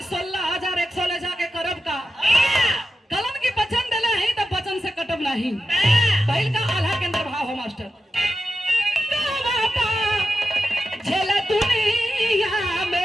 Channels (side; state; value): both; normal; correlation 0.91